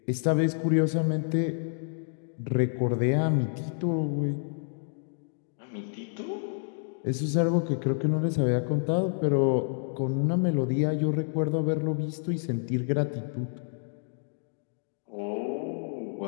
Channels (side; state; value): right; silent; digital silence